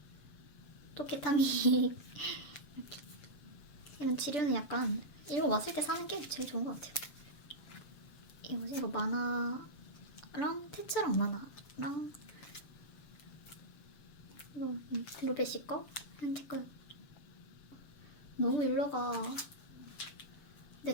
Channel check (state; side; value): late; right; 6.8 ms